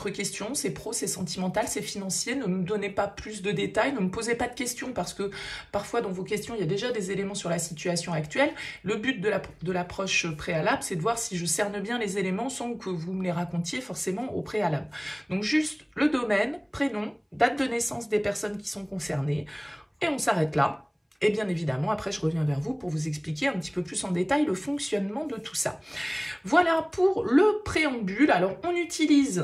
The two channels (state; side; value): identical; both; correlation 1.00